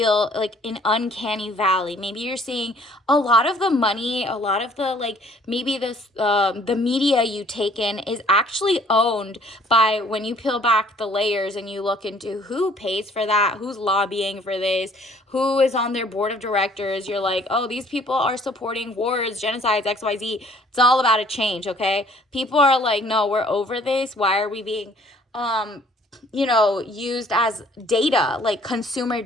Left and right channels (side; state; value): both; normal; correlation 0.58